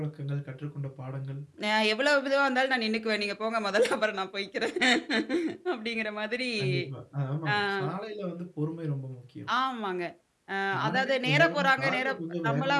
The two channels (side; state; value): both; identical; correlation 1.00